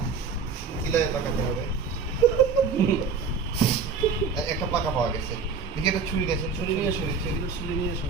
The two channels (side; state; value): left; quieter; 5.4 dB